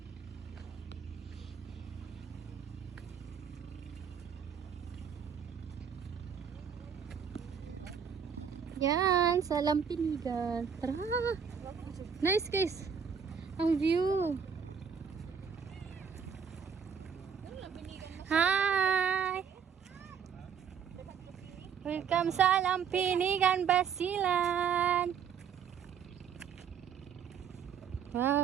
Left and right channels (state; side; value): quieter; left; 7.2 dB